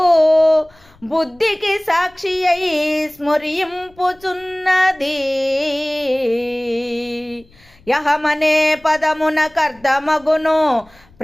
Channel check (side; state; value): left; noise; rumble, 29 dB below the sound